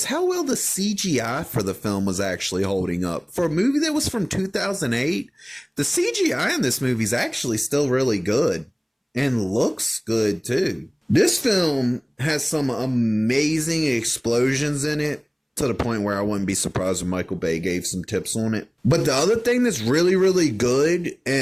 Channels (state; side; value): identical; both; correlation 1.00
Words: how well the CGI for the film was actually holding up. For a movie that was from 2008, the CGI in this movie is actually still really good and looks good too. This film has some amazing explosions in it, to the point where I wouldn't be surprised if Michael Bay gave some tips on it. But the other thing that's really, really good,